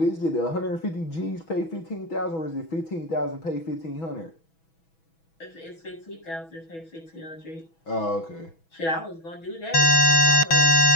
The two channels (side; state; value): right; late; 6.1 ms